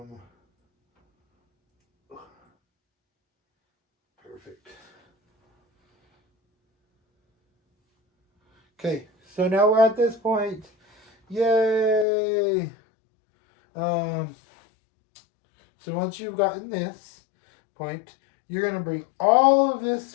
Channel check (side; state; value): right; drops out; at 12.1 s